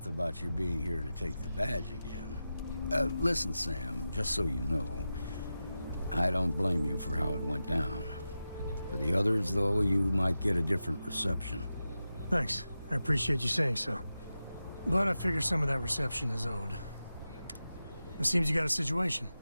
about you being here to take the badge again. Listen, Sam, just so you know, I don't blame you for how it went down. For the others, though, you might get a different reception. Thanks. I appreciate you saying so. But I figure some of that reception is owed. It seems you got a situation.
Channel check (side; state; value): both; inverted; correlation -0.92